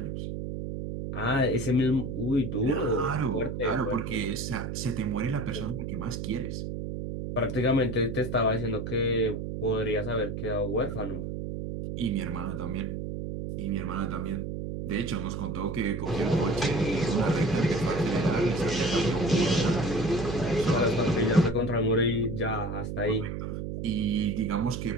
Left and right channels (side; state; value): right; noise; hum, 5 dB below the sound